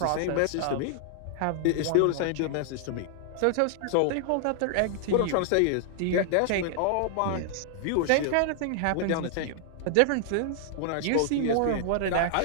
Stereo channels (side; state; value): both; different; correlation -0.01